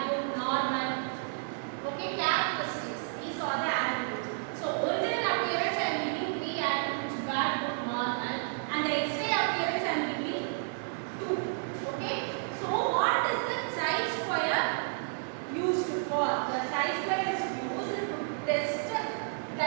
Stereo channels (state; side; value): silent; left; digital silence